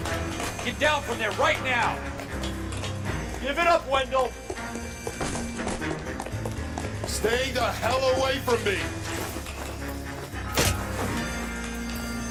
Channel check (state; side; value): identical; both; correlation 1.00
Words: Get down from there right now. Give it up, Wendell! Stay the hell away from me!